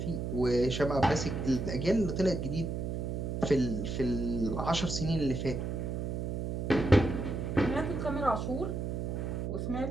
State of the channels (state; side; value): noise; right; hum, 2 dB below the sound